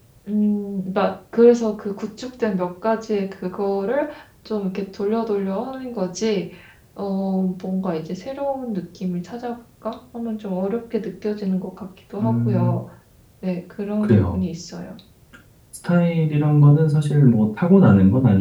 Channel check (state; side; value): identical; both; correlation 1.00